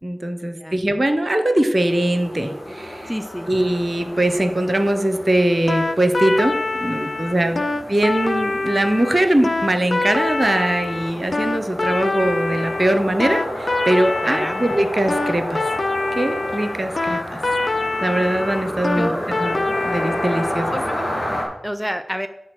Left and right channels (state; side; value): normal; both; correlation 0.95